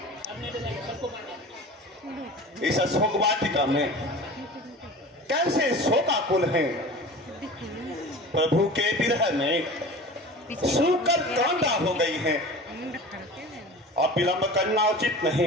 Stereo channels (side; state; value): both; normal; correlation 0.37